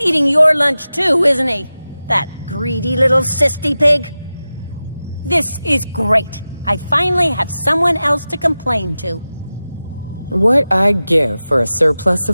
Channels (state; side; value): inverted; both; correlation -0.95